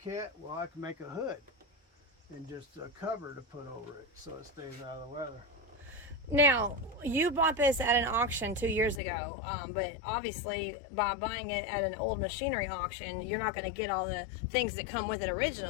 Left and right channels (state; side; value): drops out; right; at 9.0 s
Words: Well, I can make a hood and just a cover to put over it so it stays out of the weather. Now, you bought this at an auction 2 years ago, but obviously by buying it at an old machinery auction, you're not going to get all the things that come with it